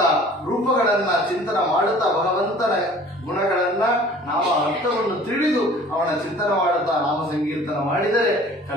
ರೂಪಗಳನ್ನ ಚಿಂತನ ಮಾಡುತ್ತಾ ಭಗವಂತನ ಗುಣಗಳನ್ನ, ನಾಮ ಅರ್ಥವನ್ನು ತಿಳಿದು ಅವನ ಚಿಂತನ ಮಾಡುತ್ತಾ ನಾಮ ಸಂಕೀರ್ತನ ಮಾಡಿದರೆ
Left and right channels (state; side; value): normal; both; correlation 0.49